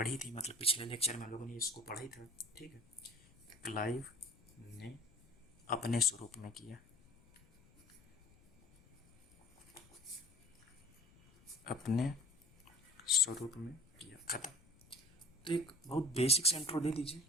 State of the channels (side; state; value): left; noise; rumble, 27 dB below the sound